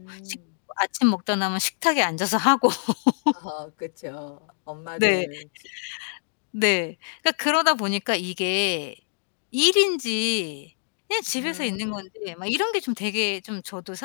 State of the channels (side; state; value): right; silent; digital silence